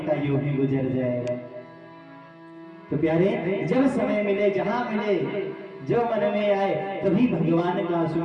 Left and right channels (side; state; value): both; identical; correlation 1.00